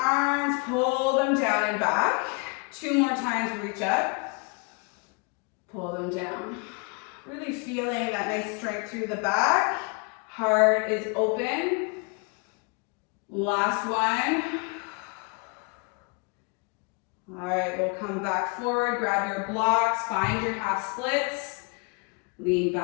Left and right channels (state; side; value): quieter; right; 32.7 dB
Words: pull them down and back. 2 more times, reach up. Pull them down. Really feeling that nice strength through the back. Heart is open. Last one. All right, we'll come back forward, grab your blocks, find your half splits, lean